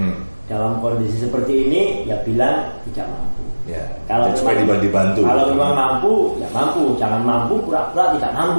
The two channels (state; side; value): inverted; both; correlation -1.00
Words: dalam kondisi seperti ini ya bilang tidak mampu. Kalau supaya dibantu. Kalau memang mampu, ya mampu. Jangan mampu pura-pura tidak